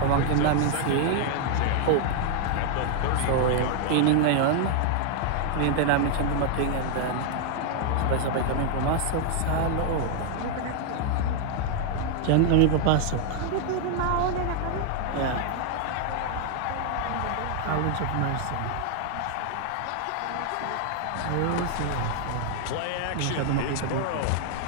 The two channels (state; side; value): different; both; correlation 0.00